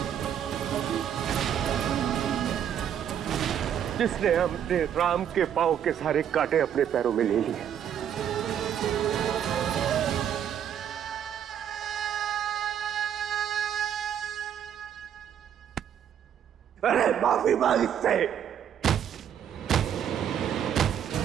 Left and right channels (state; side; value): quieter; left; 9.3 dB